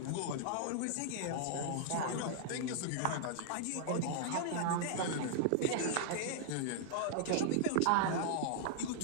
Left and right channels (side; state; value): both; different; correlation -0.01